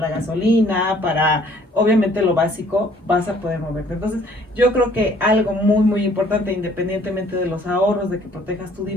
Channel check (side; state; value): both; normal; correlation 0.59